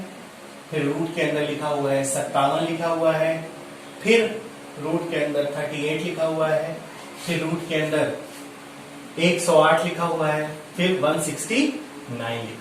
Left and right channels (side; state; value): both; identical; correlation 1.00